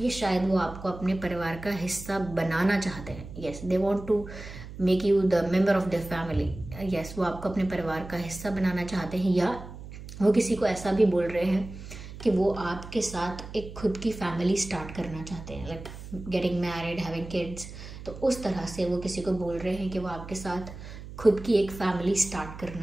ये शायद वो आपको अपने परिवार का हिस्सा बनाना चाहते हैं। Yes, they want to make you the member of the family. Yes, वो आपको अपने परिवार का हिस्सा बनाना चाहते हैं, या वो किसी को ऐसा भी बोल रहे हैं कि वो आपके साथ एक खुद की फैमिली स्टार्ट करना चाहते हैं, like getting married, having kids. तो उस तरह से वो किसी को बोल रहे हैं कि वो आपके साथ खुद की एक फैमिली स्टार्ट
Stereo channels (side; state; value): right; noise; hum, 13 dB below the sound